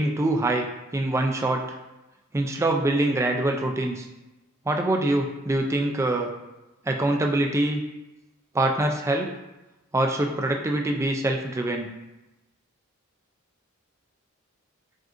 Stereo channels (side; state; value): both; normal; correlation 0.69